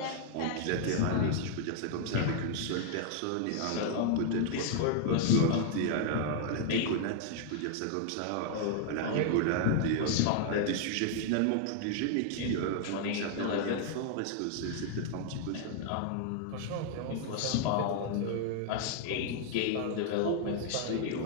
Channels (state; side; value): different; both; correlation 0.00